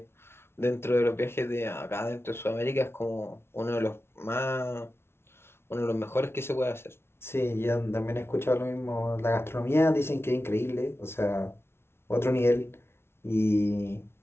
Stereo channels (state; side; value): late; right; 0.12 ms